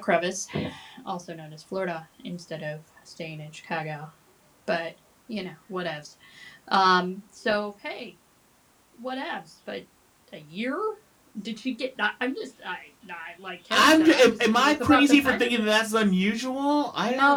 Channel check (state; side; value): identical; both; correlation 1.00